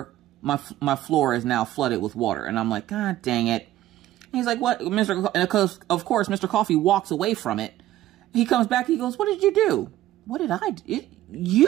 My floor is now flooded with water. And I'm like, God dang it. And he's like, what? And of course, Mr. Coffee walks away from it. He comes back. He goes, what did you do? What did I do?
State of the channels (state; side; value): quieter; left; 14.3 dB